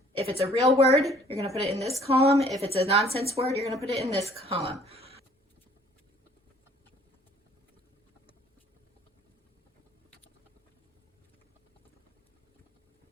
if it's a real word, you're going to put it in this column. If it's a nonsense word, you're going to put it in this column.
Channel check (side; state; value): both; normal; correlation 0.57